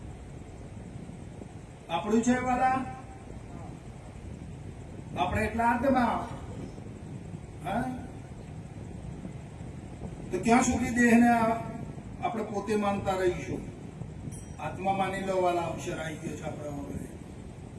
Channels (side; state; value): both; identical; correlation 1.00